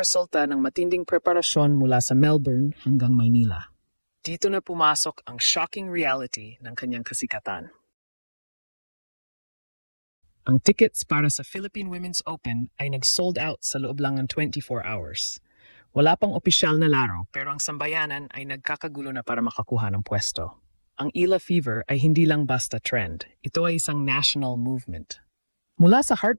ng matinding preparasyon mula sa Melbourne hanggang Maynila. Dito na pumasok ang shocking reality ng kanyang kasikatan. Ang tickets para sa Philippine Women's Open ay nag-sold out sa loob lang ng 24 hours. Wala pang opisyal na laro pero ang sambayanan ay nagkakagulo na para makakuha ng pwesto. Ang Ila Fever ay hindi lang basta trend. Ito ay isang national movement. Mula sa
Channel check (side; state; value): both; inverted; correlation -1.00